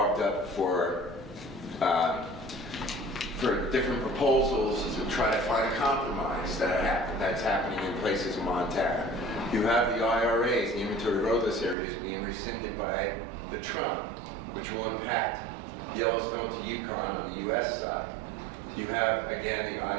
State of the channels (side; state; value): left; drops out; at 11.8 s